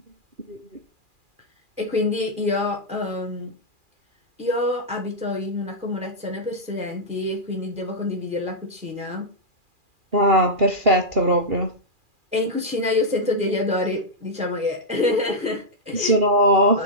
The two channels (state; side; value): late; left; 2.4 ms